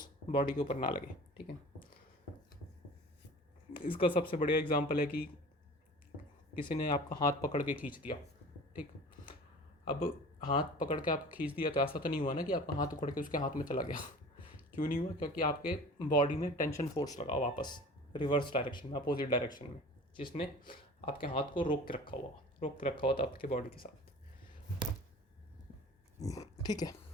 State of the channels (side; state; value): both; normal; correlation 0.41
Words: बॉडी के ऊपर ना लगे, ठीक है। इसका सबसे बढ़िया एग्जांपल है कि किसी ने आपका हाथ पकड़ के खींच दिया, ठीक। अब हाथ पकड़ के आप खींच दिया तो ऐसा तो नहीं हुआ ना कि आपका हाथ उखड़ के उसके हाथ में चला गया। क्यों नहीं हुआ? क्योंकि आपके बॉडी में टेंशन फोर्स लगा वापस रिवर्स डायरेक्शन में, अपोजिट डायरेक्शन में, जिसने आपके हाथ को रोक के रखा हुआ था आपके बॉडी के साथ, ठीक है।